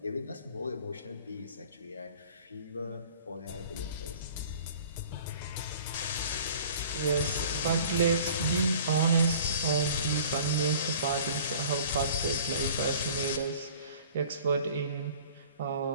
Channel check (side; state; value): both; inverted; correlation -0.47